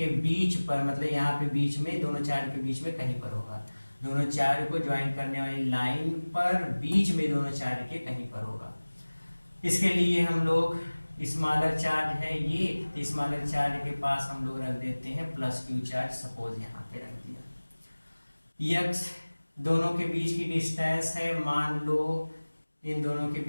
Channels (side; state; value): both; inverted; correlation -1.00